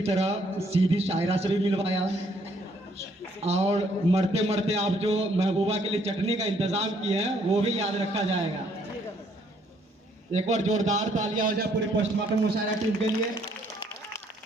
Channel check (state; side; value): normal; both; correlation 0.67